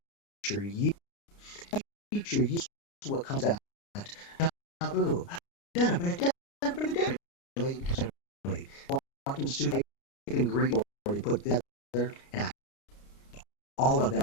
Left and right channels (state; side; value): late; right; 29 ms